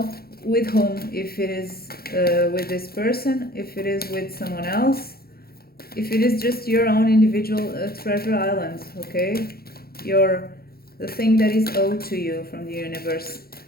with whom, if it is with this person, if it is with someone else, if it is just your own individual treasure island, okay? The thing that is owed to you from the universe.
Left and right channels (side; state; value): right; late; 0.44 ms